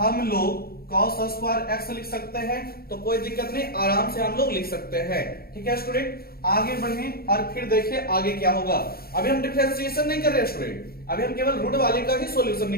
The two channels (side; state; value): right; late; 0.44 ms